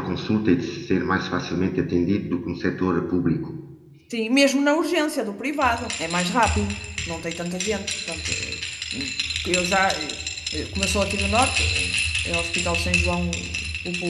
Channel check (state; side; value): identical; both; correlation 1.00